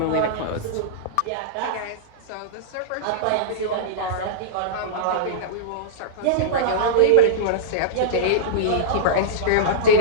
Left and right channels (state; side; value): different; both; correlation -0.03